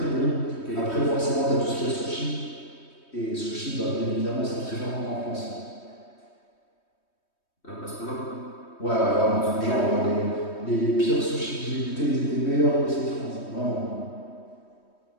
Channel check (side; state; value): right; late; 3.2 ms